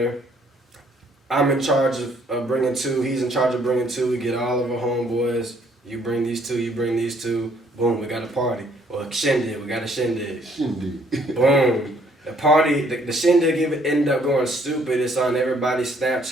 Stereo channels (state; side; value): normal; both; correlation 0.64